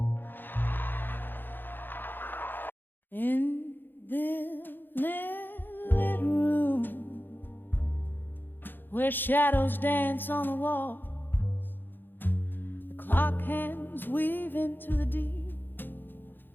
In this lit room where shadows dance on the walls, the clock hands weave into the deep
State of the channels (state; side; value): late; right; 0.094 ms